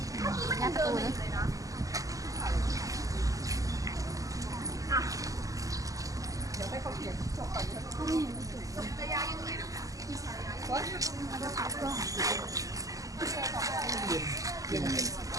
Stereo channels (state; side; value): late; left; 0.17 ms